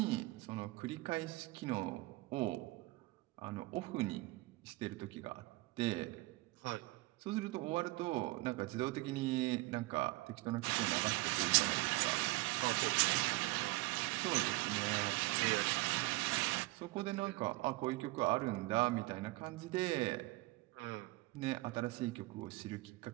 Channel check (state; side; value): quieter; left; 21.9 dB